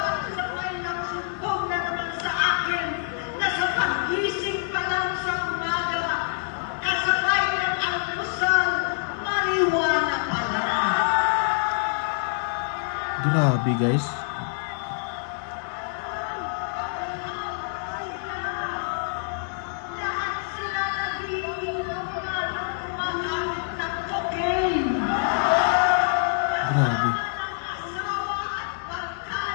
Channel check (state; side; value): silent; right; 61 dB below the other